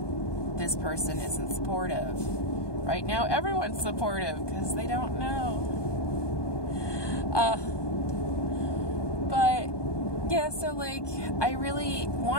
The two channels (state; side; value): late; right; 1.2 ms